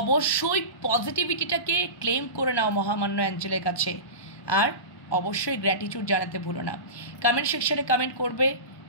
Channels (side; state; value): right; late; 1.2 ms